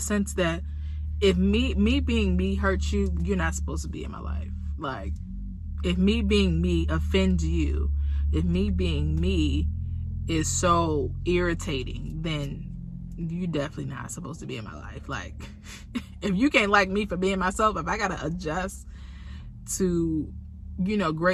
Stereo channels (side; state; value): both; identical; correlation 1.00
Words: that if me being me hurts you, you're not supposed to be in my life. Like, if me being me offends you, if me being me is so irritating, then you definitely not supposed to be in my life. Like, if you can't like me for being myself, if I gotta adjust to,